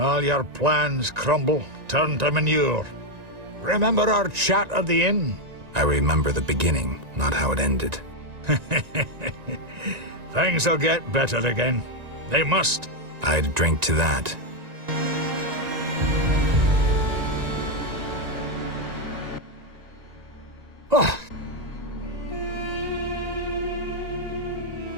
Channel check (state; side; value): late; left; 1.9 ms